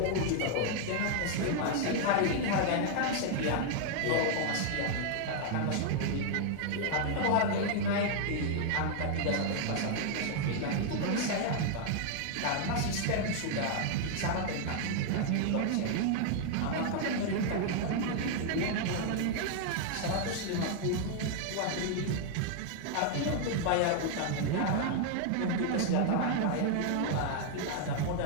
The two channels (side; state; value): both; different; correlation 0.00